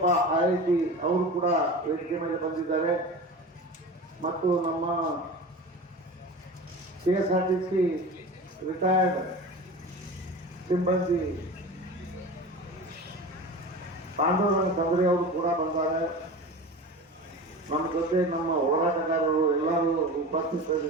IIT ಅವರು ಕೂಡ ವೇದಿಕೆ ಮೇಲೆ ಬಂದಿದ್ದಾರೆ. ಮತ್ತು ನಮ್ಮ KSRTC ರಿಟೈರ್ಡ್ ಸಿಬ್ಬಂದಿ ಪಾಂಡವರಂಗ ತಂಗ್ರಿ ಅವರು ಕೂಡ ಬಂದ್ದಾರೆ. ನಮ್ಮ ಜೊತೆ ನಮ್ಮ ಹೋರಾಟಗಾರರು ಎಲ್ಲರೂ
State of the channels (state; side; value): normal; both; correlation 0.32